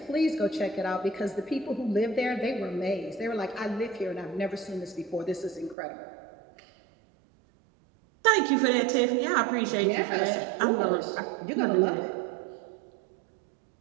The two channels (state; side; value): drops out; left; at 5.8 s